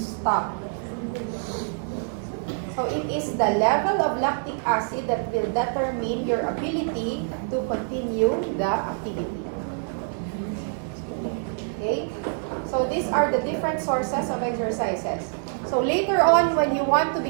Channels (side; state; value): left; silent; digital silence